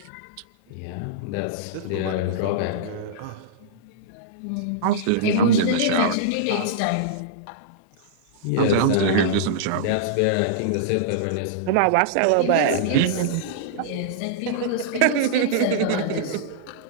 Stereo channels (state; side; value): different; both; correlation -0.03